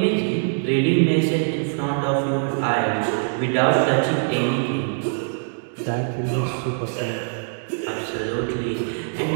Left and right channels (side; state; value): left; silent; digital silence